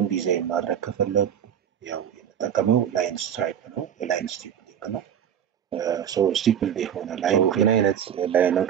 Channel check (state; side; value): quieter; left; 9.1 dB